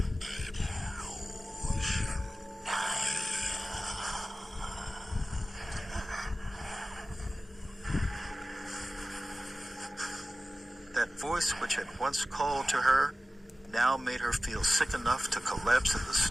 That voice which had once called to her now made her feel sick enough to collapse in the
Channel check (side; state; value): both; normal; correlation 0.95